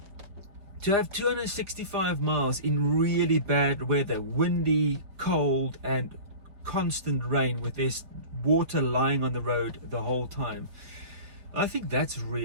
to have 265 miles in really bad weather, windy, cold and constant rain, with this water lying on the road the whole time, I think that's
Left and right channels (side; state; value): left; late; 5.1 ms